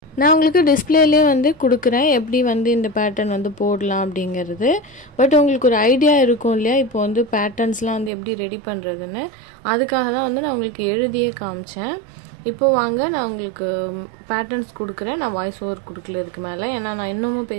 நான் உங்களுக்கு டிஸ்பிளேலேயே வந்து கொடுக்குறேன் எப்படி வந்து இந்த பேட்டர்ன் வந்து போடலாம் அப்படிங்கிறது. பட் உங்களுக்கு ஒரு ஐடியா இருக்கும் இல்லையா இப்போ வந்து பேட்டர்ன்ஸ்லாம் வந்து எப்படி ரெடி பண்ணுறதுன்னு. அதுக்காக தான் வந்து நான் உங்களுக்கு எழுதியே காமிச்சேன். இப்போது வாங்க நான் உங்களுக்கு பேட்டர்ன்ஸ் கொடுக்குறேன். நான் வாய்ஸ் ஓவர் கொடுக்கல இதுக்கு மேலே, ஏன்னா நான் இன்னமும்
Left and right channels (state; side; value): drops out; left; at 8.1 s